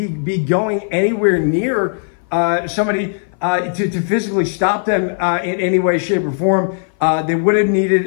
be going anywhere near somebody to physically stop them in any way, shape, or form. They would have needed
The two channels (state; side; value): silent; right; 58 dB below the other